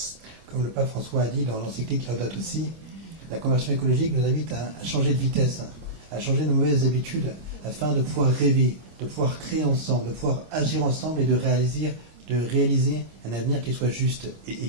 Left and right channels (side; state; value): left; late; 26 ms